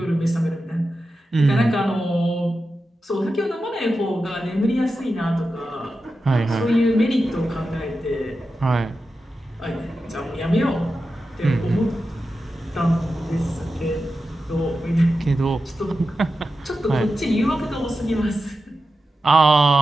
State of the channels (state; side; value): normal; both; correlation 0.91